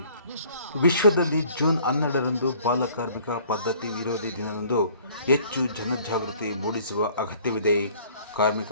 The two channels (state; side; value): inverted; both; correlation -0.55